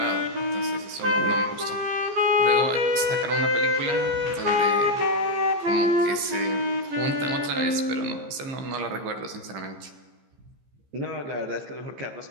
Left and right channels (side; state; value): left; late; 15 ms